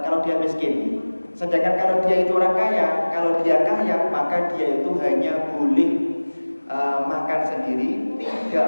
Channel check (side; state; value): both; inverted; correlation -1.00